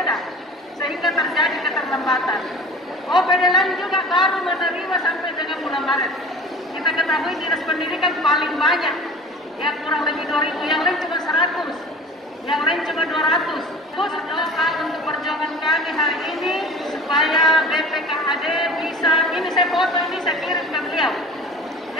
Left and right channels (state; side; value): normal; both; correlation 0.40